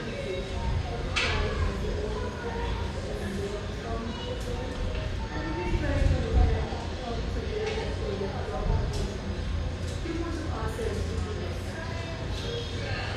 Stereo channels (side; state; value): both; identical; correlation 1.00